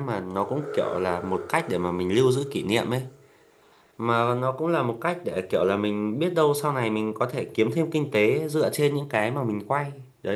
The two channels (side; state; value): both; identical; correlation 1.00